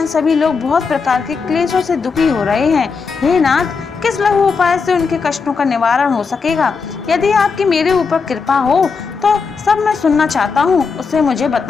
सभी लोग बहुत प्रकार के क्लेशों से दुखी हो रहे हैं। हे नाथ, किस लघु उपाय से उनके कष्टों का निवारण हो सकेगा? यदि आपकी मेरे ऊपर कृपा हो तो सब मैं सुनना चाहता हूँ, उसे मुझे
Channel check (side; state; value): right; quieter; 5.1 dB